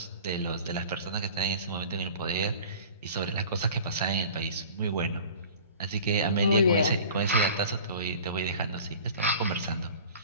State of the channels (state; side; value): inverted; both; correlation -0.43